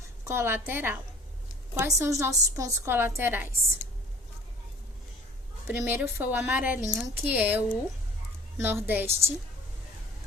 colateral. Quais são os nossos pontos colaterais? Primeiro foi o amarelinho, que é o nordeste,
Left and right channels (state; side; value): normal; both; correlation 0.48